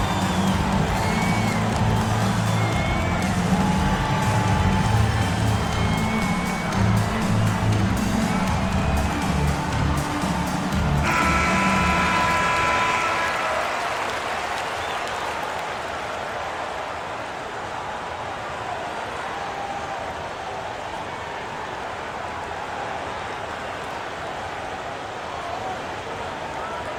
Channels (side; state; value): both; identical; correlation 1.00